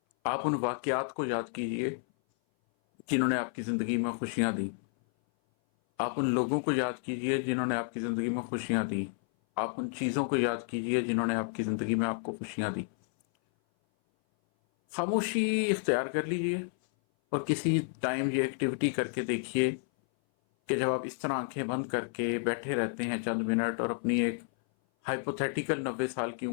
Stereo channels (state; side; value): silent; right; 57 dB below the other